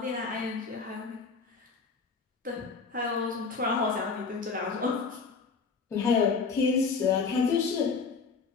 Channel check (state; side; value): quieter; right; 5.0 dB